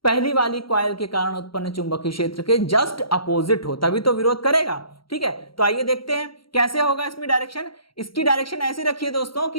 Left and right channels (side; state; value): right; late; 0.74 ms